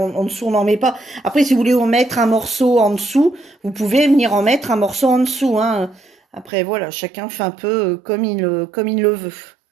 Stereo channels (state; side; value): drops out; left; at 6.5 s